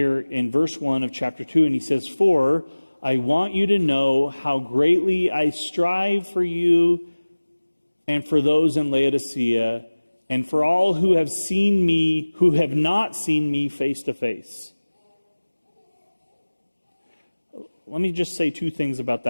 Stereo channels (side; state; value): both; inverted; correlation -1.00